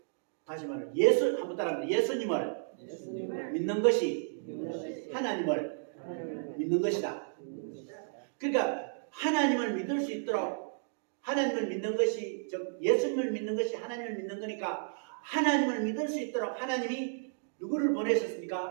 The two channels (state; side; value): silent; left; digital silence